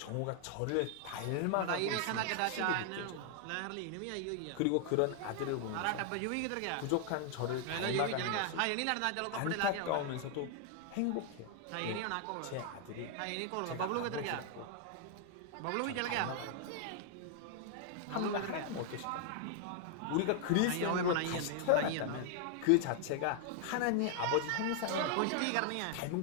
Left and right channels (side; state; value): both; different; correlation 0.00